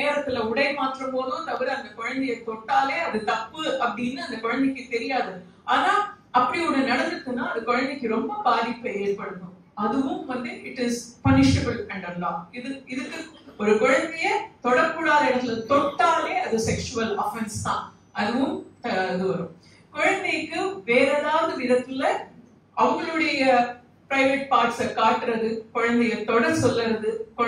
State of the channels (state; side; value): identical; both; correlation 1.00